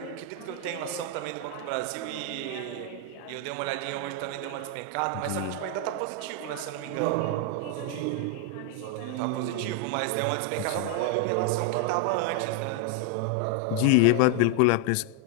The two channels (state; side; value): different; both; correlation 0.00